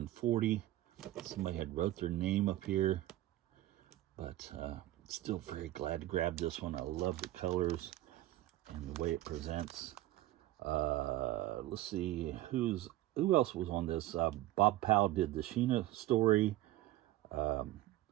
40. Somebody had wrote their name up here, but still very glad to grab this one. I love the colors and the way it presents. Let's see who else was on this. Bob Powell did the Sheena story.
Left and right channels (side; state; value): left; quieter; 15.5 dB